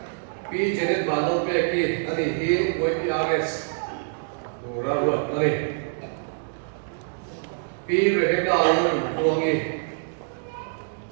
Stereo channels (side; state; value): left; silent; digital silence